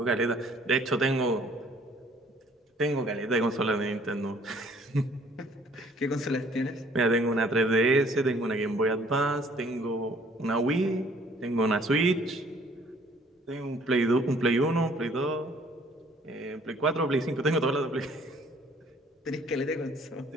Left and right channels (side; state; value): both; normal; correlation 0.58